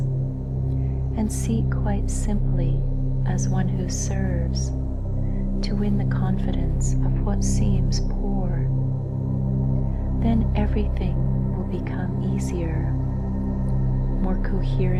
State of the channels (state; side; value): identical; both; correlation 1.00